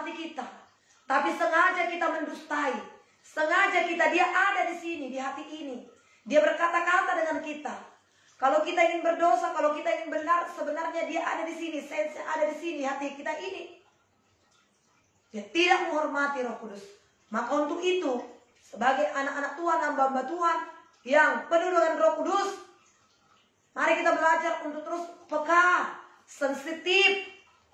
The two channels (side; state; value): both; identical; correlation 1.00